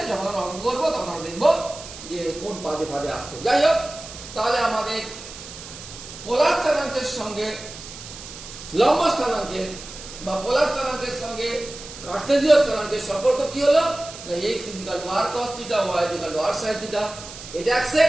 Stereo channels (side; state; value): right; noise; hiss, 13 dB below the sound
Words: যখন আমরা অঙ্ক করবো তখন আমরা দেখবো যে কোন পাদে পাদে আসছে। যাই হোক, তাহলে আমাদের পোলার স্থানাঙ্কের সঙ্গে লম্ব স্থানাঙ্কের বা পোলার স্থানাঙ্কের সঙ্গে কার্টেসীয় স্থানাঙ্কের সম্পর্ক কি হলো না x equal to r cos theta y equal to r sin theta এটা